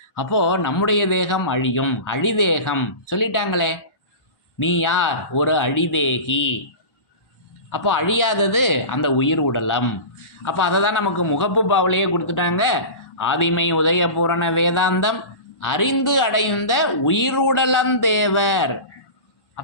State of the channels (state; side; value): late; right; 1.1 ms